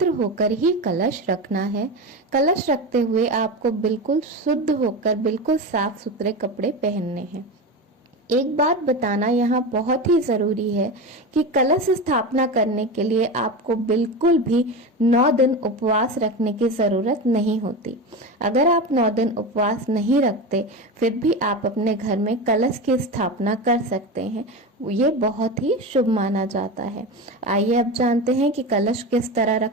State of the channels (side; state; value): both; normal; correlation 0.23